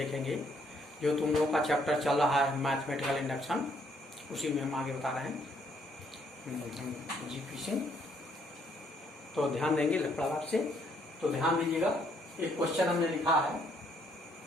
जो तुम लोगों का चैप्टर चल रहा है मैथमेटिकल इंडक्शन, उसी में हम आगे बता रहे हैं जीपी सिंह। तो ध्यान देंगे लड़ाप से। तो ध्यान दीजिएगा, एक क्वेश्चन हमने लिखा है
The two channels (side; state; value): both; normal; correlation 0.69